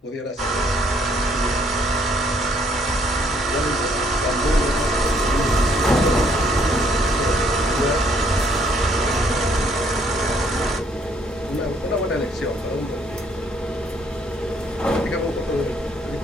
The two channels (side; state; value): both; normal; correlation 0.66